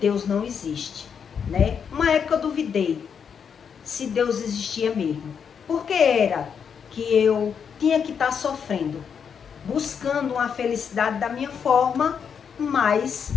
não existe, né? Uma época eu duvidei se Deus existia mesmo. Porque era que eu tinha que estar sofrendo, buscando uma felicidade da minha forma, mas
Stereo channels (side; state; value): right; quieter; 7.0 dB